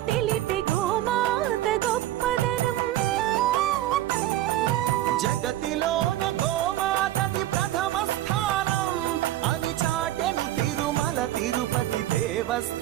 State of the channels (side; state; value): left; quieter; 14.1 dB